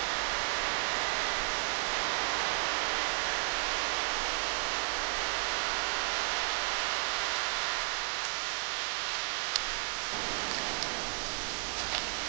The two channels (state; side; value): quieter; left; 39.4 dB